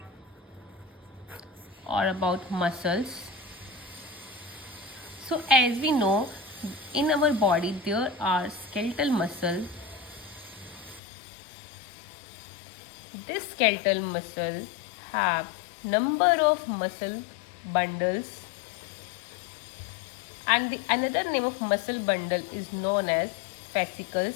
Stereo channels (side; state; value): right; drops out; at 11.0 s